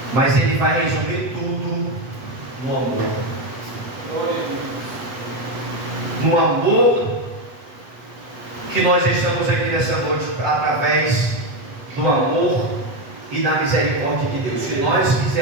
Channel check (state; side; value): late; left; 8.1 ms